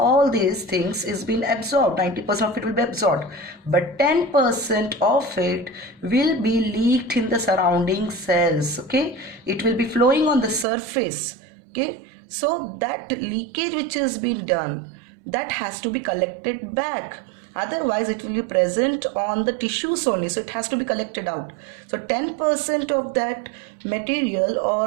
these things is being absorbed. 90% of it will be absorbed, but 10% of it will be leaked in the surrounding cells. Okay, it will be flowing on the surface. Okay, so that leakage which has been done, that has to be collected back, otherwise it will be present on the tissues only, so it has to be collected out. So 10% of that material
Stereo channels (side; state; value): left; drops out; at 10.7 s